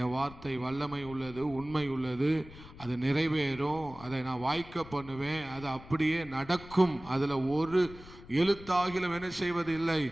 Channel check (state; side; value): noise; left; rumble, 17 dB below the sound